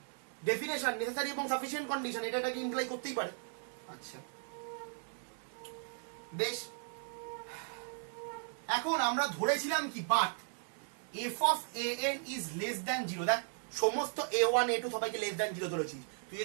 definition necessary এবং সাফিসিয়েন্ট কন্ডিশন, এটাকে ইমপ্লাই করতেই পারে। আচ্ছা বেশ, এখন আমরা ধরেছিলাম কি, but F of A N is less than 0। দেখ সমস্ত a1 a2 সবাইকে লেস দ্যান 0 ধরেছিস, তুই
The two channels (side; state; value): left; silent; 53 dB below the other